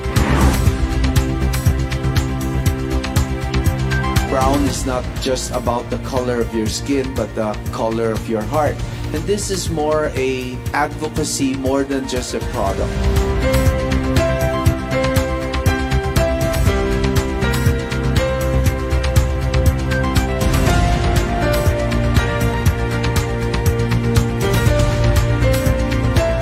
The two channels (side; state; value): both; identical; correlation 1.00